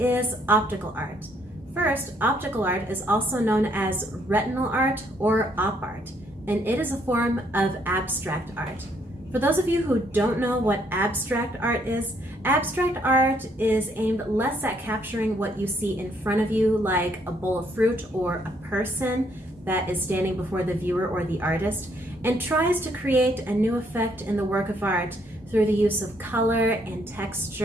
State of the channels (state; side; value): normal; both; correlation 0.69